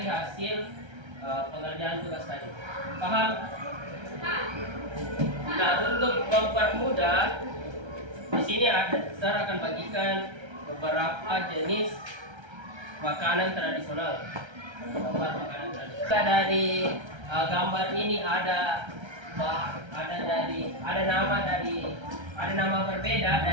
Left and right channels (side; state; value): left; late; 1.3 ms